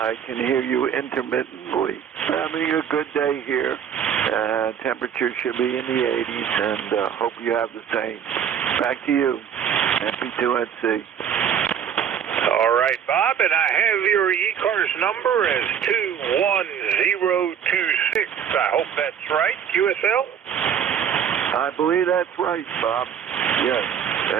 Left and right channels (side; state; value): left; quieter; 8.4 dB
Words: can hear you intermittently. Having a good day here. Temperature should be in the 80s, and hope you have the same. Back to you, MP2NC. All right, Bob, and I have your ECARS number as 21026. I hope that's right, QSL? I believe that's right, Bob. Yes,